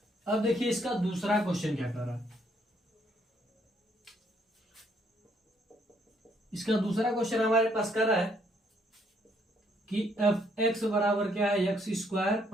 अब देखिए इसका दूसरा क्वेश्चन क्या कर रहा है। इसका दूसरा क्वेश्चन हमारे पास कर रहा है कि एफ एक्स बराबर क्या है, एक्स स्क्वायर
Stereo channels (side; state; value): both; normal; correlation 0.69